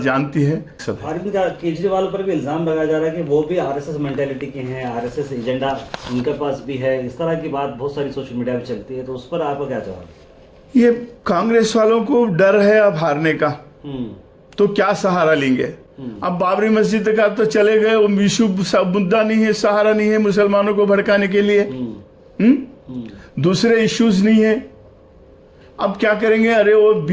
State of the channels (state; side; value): identical; both; correlation 1.00